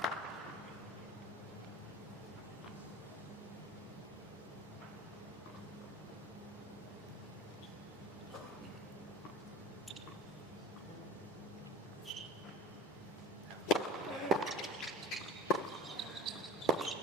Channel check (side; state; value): both; normal; correlation 0.38